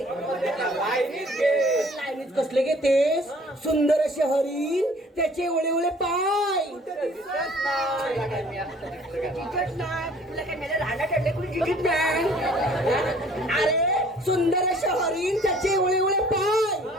लाईनीत कसले घेतेस? सुंदर असे हरिण, त्याचे ओळे पाय, दिसत नाही. काय मी आता दिसलं काय? जिंकत नाही. तुला काय मला राडा ठरले कुणी जिंकत नाही. अरे सुंदर शहरीन त्याचे एवढे एवढे पाय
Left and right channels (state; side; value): normal; both; correlation 0.54